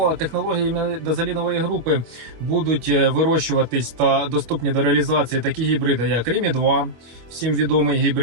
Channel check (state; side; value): late; left; 25 ms